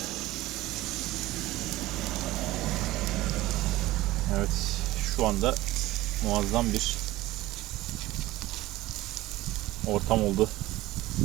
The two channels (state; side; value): quieter; left; 17.4 dB